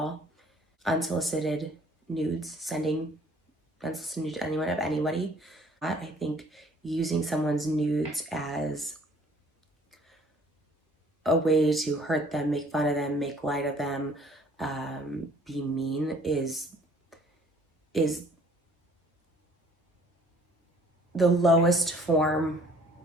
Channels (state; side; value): normal; both; correlation 0.57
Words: unsolicited nudes, sending unsolicited nudes to anyone of anybody. I think using someone's nudes as a way to hurt them, make fun of them, make light of them, be mean is the lowest form